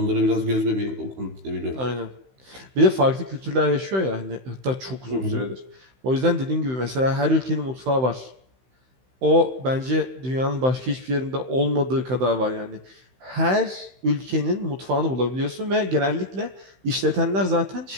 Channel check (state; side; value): late; left; 16 ms